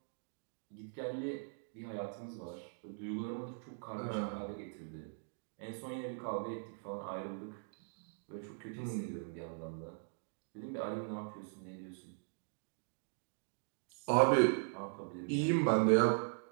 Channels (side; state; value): left; silent; digital silence